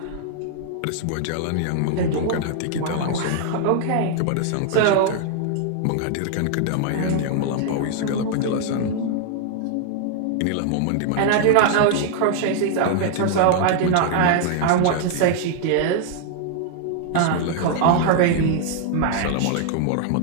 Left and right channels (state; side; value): different; both; correlation -0.01